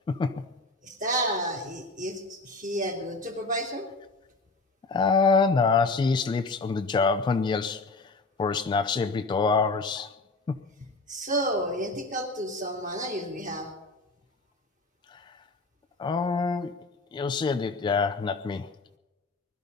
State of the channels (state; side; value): quieter; right; 3.4 dB